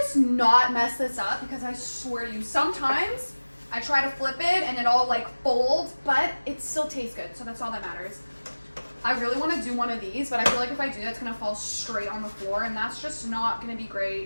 not mess this up, because I swear to you, sometimes I try to flip it and it all like folds, but it still tastes good, so that's all that matters. I really want to do one of these, but I feel like if I do that, it's going to fall straight on the floor, and that's just not going to be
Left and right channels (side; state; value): both; inverted; correlation -1.00